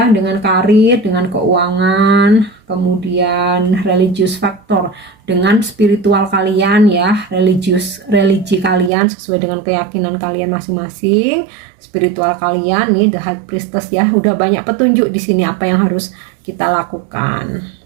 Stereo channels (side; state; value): left; drops out; at 8.9 s